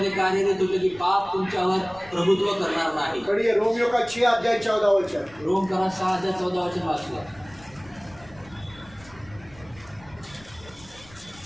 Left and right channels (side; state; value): left; noise; rumble, 23 dB below the sound